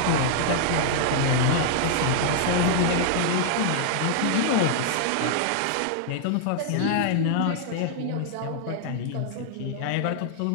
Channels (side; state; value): both; different; correlation -0.01